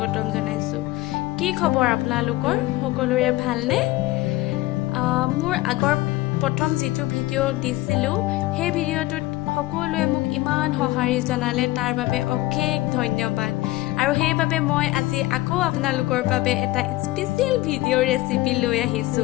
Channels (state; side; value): quieter; right; 18.1 dB